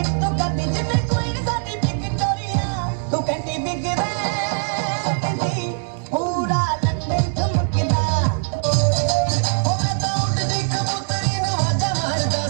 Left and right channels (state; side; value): silent; left; 59 dB below the other